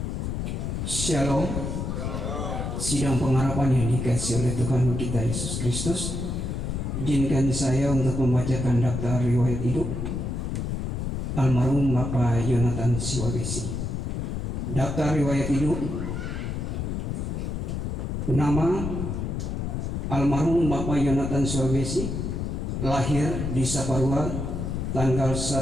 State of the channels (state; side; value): noise; left; rumble, 3 dB below the sound